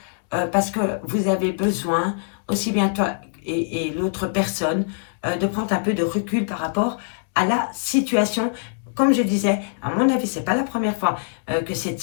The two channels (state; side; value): silent; right; digital silence